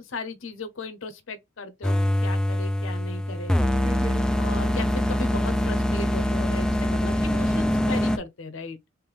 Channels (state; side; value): normal; both; correlation 0.91